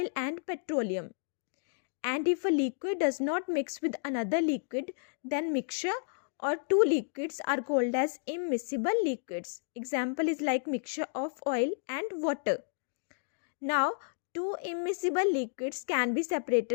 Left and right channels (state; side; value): silent; right; digital silence